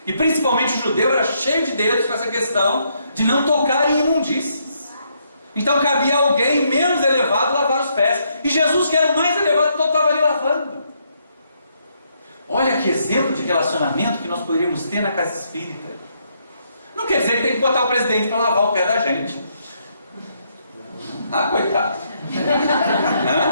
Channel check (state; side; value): inverted; both; correlation -0.74